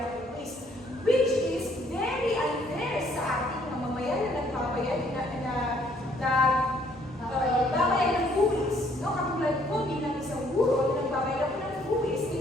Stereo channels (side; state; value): both; normal; correlation 0.64